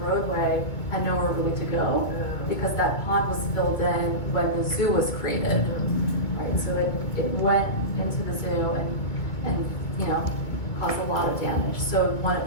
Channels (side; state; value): right; late; 2.2 ms